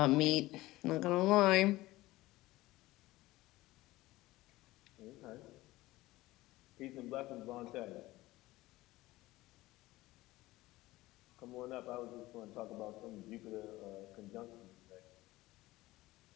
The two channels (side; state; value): right; quieter; 18.3 dB